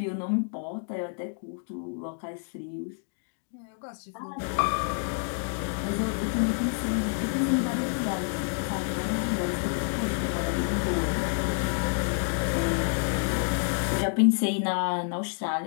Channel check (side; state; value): right; silent; 59 dB below the other